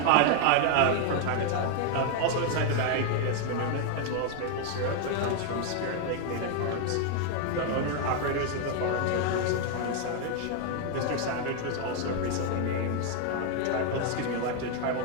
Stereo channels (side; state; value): both; different; correlation 0.01